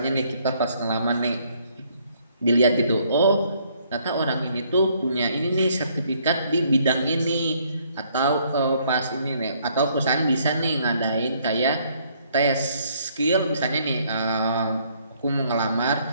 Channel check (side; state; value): both; inverted; correlation -0.66